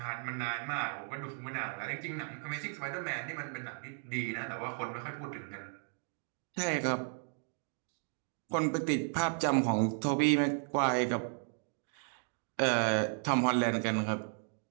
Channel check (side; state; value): left; silent; 55 dB below the other